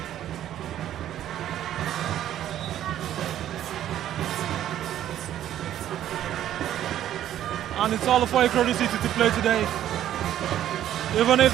And it's all for IKORODU City to play today. Even if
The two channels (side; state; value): left; quieter; 11.7 dB